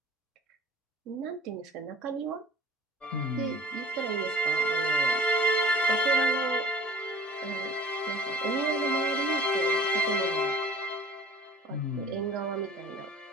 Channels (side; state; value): both; normal; correlation 0.46